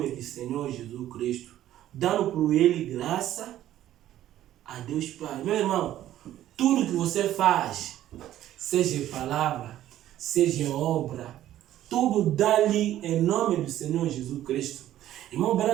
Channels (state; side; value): quieter; left; 12.8 dB